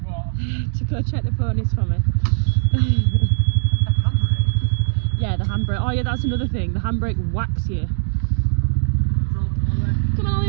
What? To go check the ponies for me. Yeah, the handbrake. Oh yeah, that's another thing. The handbrake whacks you. Come on,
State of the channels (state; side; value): silent; left; digital silence